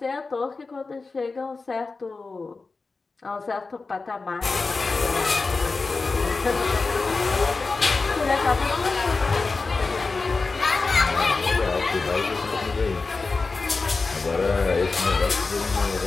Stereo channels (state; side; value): quieter; right; 4.0 dB